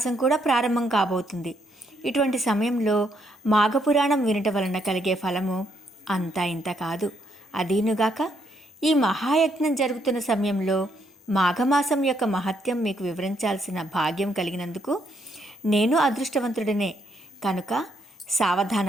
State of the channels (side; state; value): both; normal; correlation 0.74